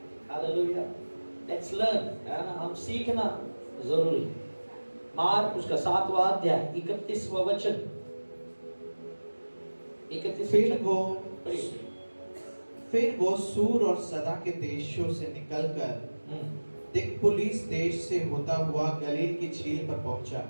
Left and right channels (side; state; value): both; inverted; correlation -1.00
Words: हालेलुया। लेट्स लर्न, है ना, हम सीखना जरूरी। मार्क उसका 7वां अध्याय 31वां वचन। 31। फिर वो सूर और सदा के देशों से निकलकर दिकपुलिस देश से होता हुआ गलील की झील पर पहुंचा।